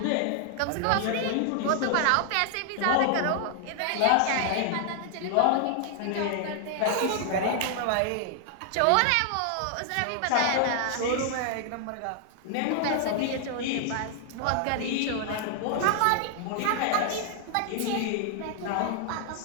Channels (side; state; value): both; different; correlation 0.00